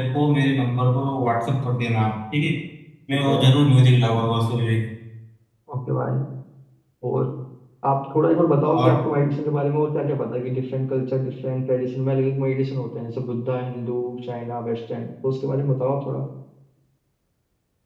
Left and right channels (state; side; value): identical; both; correlation 1.00